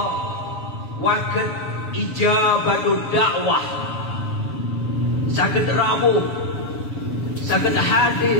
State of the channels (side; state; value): right; late; 7.1 ms